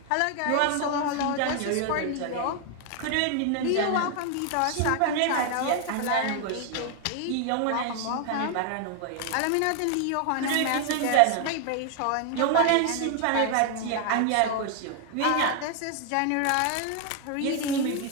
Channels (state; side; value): different; both; correlation 0.00